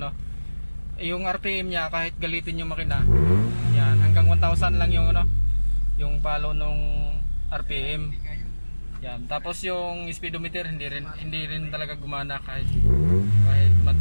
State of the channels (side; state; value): both; inverted; correlation -1.00